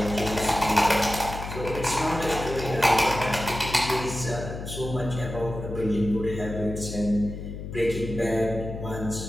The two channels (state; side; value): noise; left; hum, 8 dB below the sound